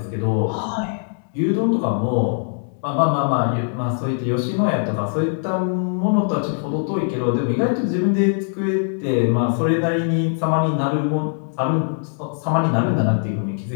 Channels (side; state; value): right; silent; digital silence